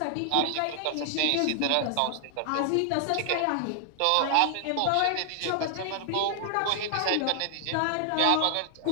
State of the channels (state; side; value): different; both; correlation 0.00